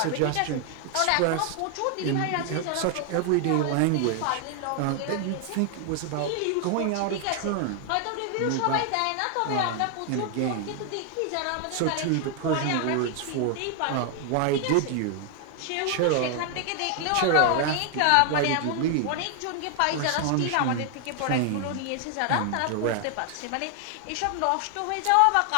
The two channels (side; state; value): both; different; correlation 0.00